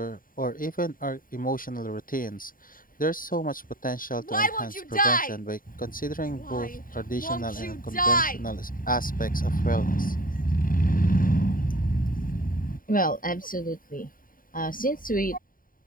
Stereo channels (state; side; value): late; right; 0.41 ms